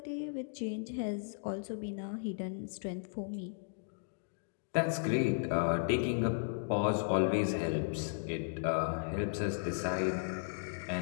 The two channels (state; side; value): silent; right; digital silence